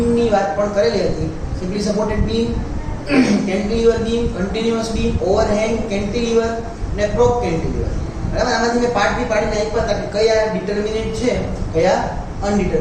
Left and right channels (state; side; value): identical; both; correlation 1.00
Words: વાત પણ કરેલી હતી. Simply supported beam, cantilever beam, continuous beam, overhang cantilever અને પ્રોપ કેન્ટિલીવર બરાબર. આમાંથી મેં પાર્ટ બી પાડીને આપ્યા હતા કે કયા ડિટર્મિનેટ છે, કયા